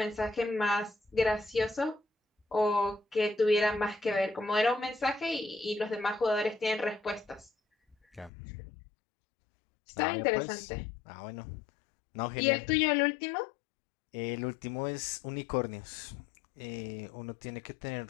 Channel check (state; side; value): drops out; right; at 8.3 s